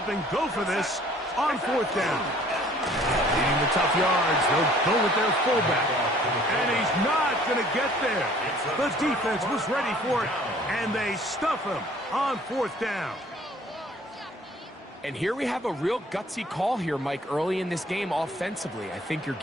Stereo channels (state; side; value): normal; both; correlation 0.55